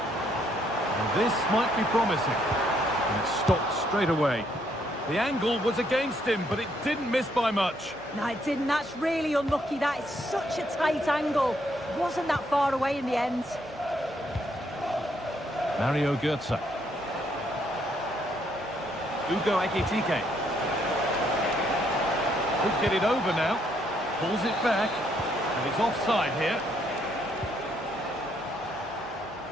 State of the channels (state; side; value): noise; left; hum, 26 dB below the sound